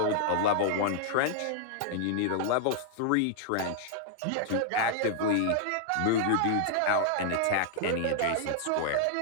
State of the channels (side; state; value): both; different; correlation 0.00